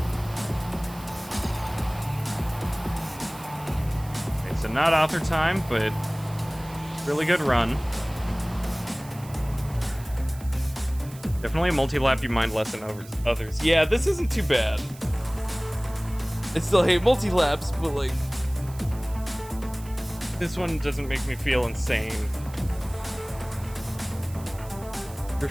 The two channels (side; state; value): right; noise; hiss, 20 dB below the sound